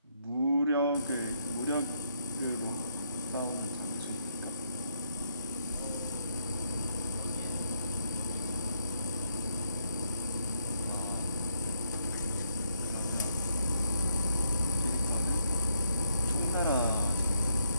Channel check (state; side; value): inverted; both; correlation -0.74